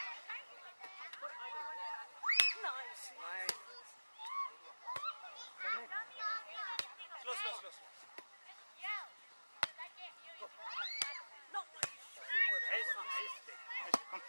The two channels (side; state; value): both; inverted; correlation -1.00